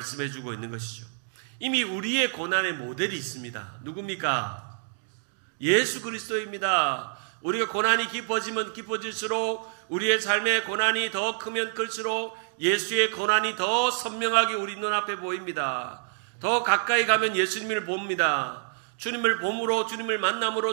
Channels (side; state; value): left; silent; digital silence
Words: 있는 것이죠. 이미 우리의 고난의 모델이 있습니다. 누굽니까? 예수 그리스도입니다. 우리가 고난이 깊어지면 깊어질수록, 우리의 삶의 고난이 더 크면 클수록 예수의 고난이 더 선명하게 우리 눈앞에 보입니다. 더 가까이 가면 예수님을 봅니다. 주님을 봄으로, 주님을